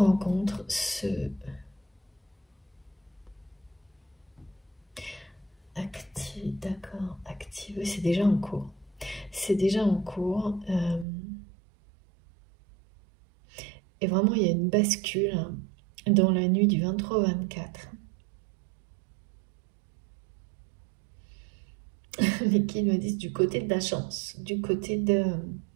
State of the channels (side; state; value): left; drops out; at 11.1 s